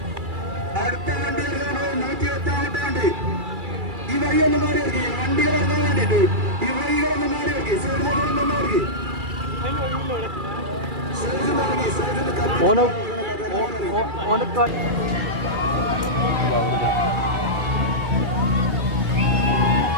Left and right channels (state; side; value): late; left; 2.3 ms